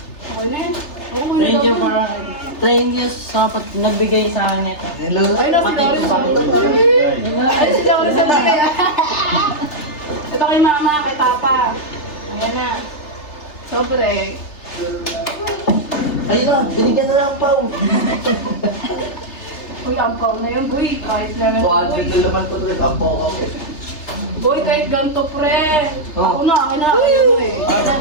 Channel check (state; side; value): late; right; 3.3 ms